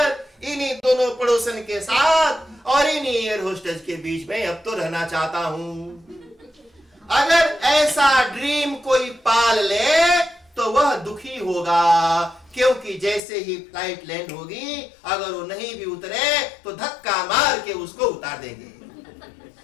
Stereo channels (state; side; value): drops out; right; at 13.2 s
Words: इन्हीं दोनों पड़ोसन के साथ और इन्हीं एयर होस्टेज के बीच में अब तो रहना चाहता हूं। अगर ऐसा ड्रीम कोई पाल ले तो वह दुखी होगा, क्योंकि जैसे ही फ्लाइट लैंड होगी, अगर वो नहीं भी उतरे तो धक्का मार के उसको उतार देंगे।